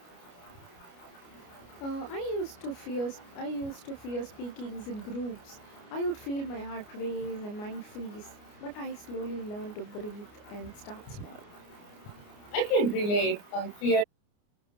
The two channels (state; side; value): late; right; 29 ms